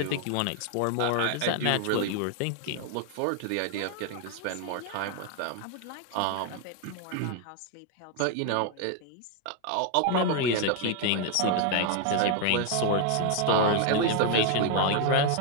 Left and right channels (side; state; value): both; different; correlation 0.00